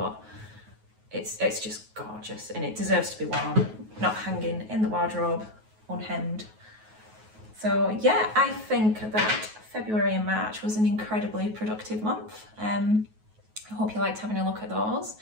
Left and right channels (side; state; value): left; late; 9.3 ms